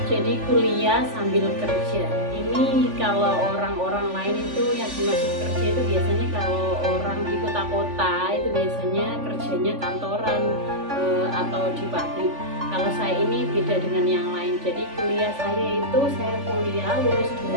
Jadi kuliah sambil kerja ini kalau orang-orang lain itu yang dimaksud kerja itu biasanya kalau orang di kota-kota itu biasanya kerjanya kantoran atau di pabrik. Kalau saya ini beda dengan yang lain. Jadi kuliah saya itu saya kuliah lulus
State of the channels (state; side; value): late; left; 3.5 ms